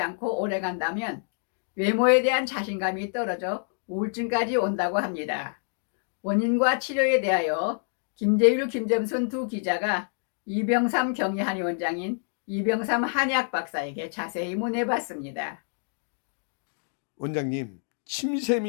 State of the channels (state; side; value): silent; right; 60 dB below the other